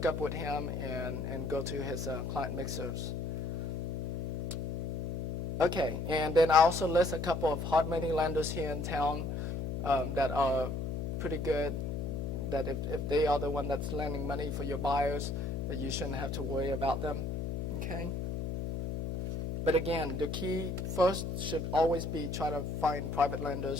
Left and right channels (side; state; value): left; noise; hum, 2 dB below the sound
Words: up with him and go to his client mixers. Okay, and then I also list a couple of hard money lenders here in town that are pretty good, that if they are the one that's lending money for your buyers, that you shouldn't have to worry about them, okay? But again, the key first should always be try to find private